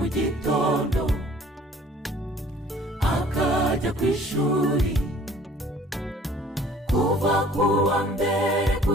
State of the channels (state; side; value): normal; both; correlation 0.53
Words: gitondo akajya ku ishuri, kuva ku wa mbere